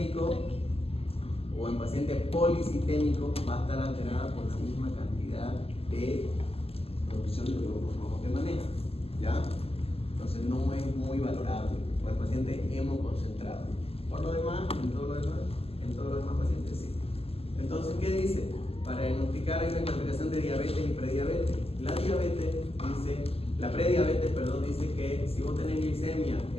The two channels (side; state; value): right; late; 0.28 ms